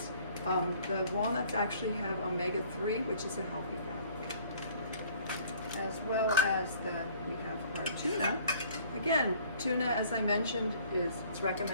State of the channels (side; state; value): both; inverted; correlation -0.55